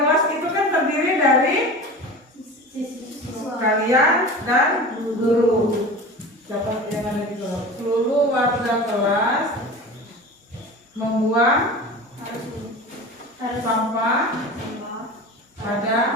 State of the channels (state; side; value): normal; both; correlation 0.34